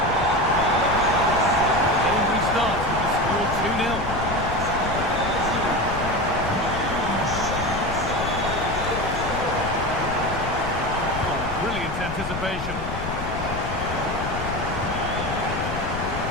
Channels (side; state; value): left; noise; rumble, 7 dB below the sound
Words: The game restarts with the score 2-0. Oh, brilliant anticipation.